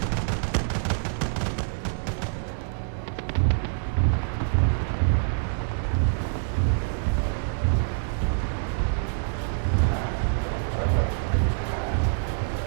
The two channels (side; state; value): left; silent; digital silence